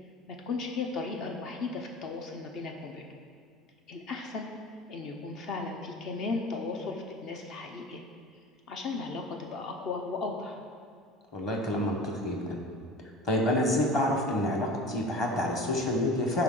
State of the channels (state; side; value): normal; both; correlation 0.37